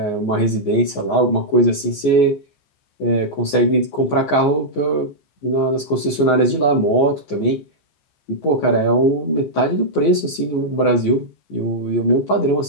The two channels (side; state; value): right; late; 14 ms